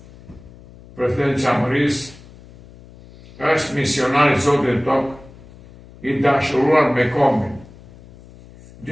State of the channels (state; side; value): noise; left; hum, 21 dB below the sound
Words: Presidenti Çamërisë është misionar i Zotit tokë, i dashuruar me kombin.